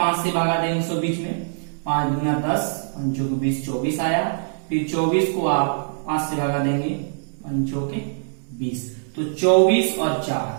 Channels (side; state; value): left; silent; digital silence